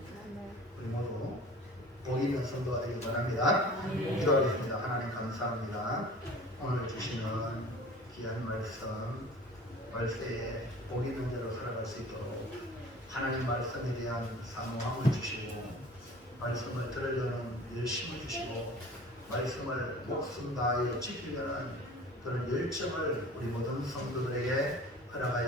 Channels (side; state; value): both; normal; correlation 0.43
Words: 우리 모두 복 있는 성도가 되길 바랍니다. 기도하겠습니다. 하나님 감사합니다. 오늘 주시는 귀한 말씀, 말세에 복 있는 대로 살아갈 수 있도록 하나님 말씀에 대한 사모함을 주시고 말씀을 들으려는 열심을 주시고 말씀을 목숨 다하여 지키려는 그런 열정을 우리 모든 성도들에게